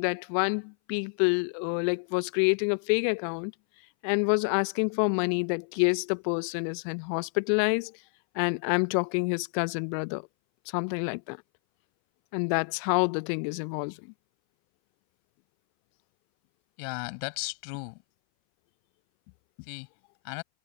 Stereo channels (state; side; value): silent; right; 59 dB below the other